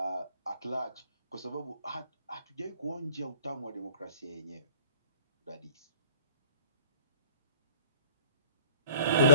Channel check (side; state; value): both; inverted; correlation -0.48